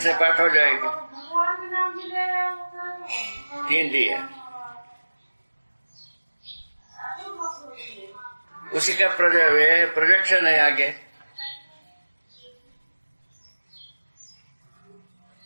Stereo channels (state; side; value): inverted; both; correlation -1.00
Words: पाठ हो जाएगा। 3 दिए, उसी का प्रोजेक्शन है आगे।